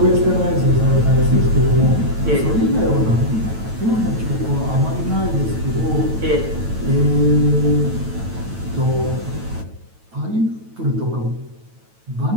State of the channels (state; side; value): late; left; 9.1 ms